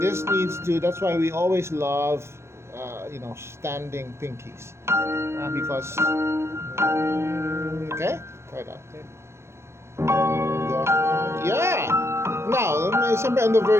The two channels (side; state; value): left; late; 0.13 ms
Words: This needs to, that's why we always love, standing pinkies. Because, okay? Try that. Okay. Yeah! Now, siyempre on the